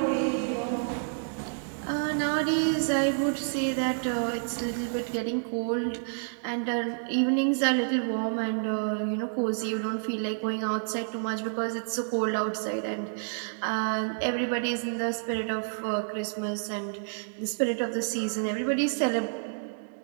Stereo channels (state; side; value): silent; left; digital silence